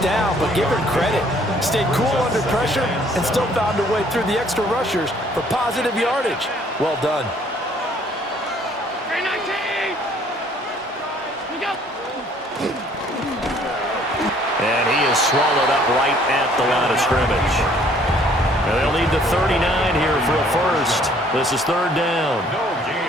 down, but give him credit. Stayed cool under pressure and still found a way through the extra rushers for positive yardage. Well done. And he is swallowed up right at the line of scrimmage. And they'll need the 39 here for a first. This is third down. No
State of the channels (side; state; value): both; normal; correlation 0.60